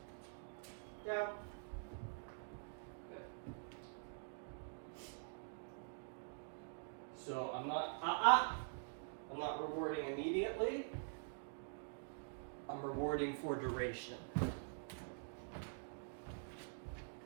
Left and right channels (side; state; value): left; silent; digital silence